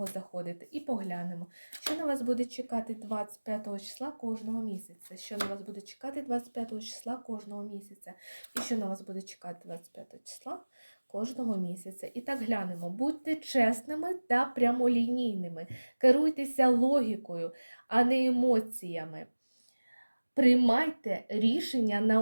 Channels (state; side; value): inverted; both; correlation -1.00